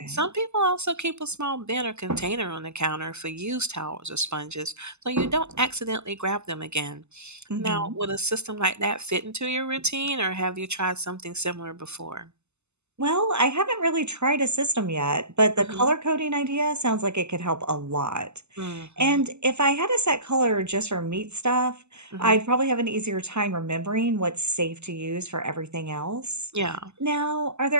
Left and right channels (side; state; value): left; late; 0.81 ms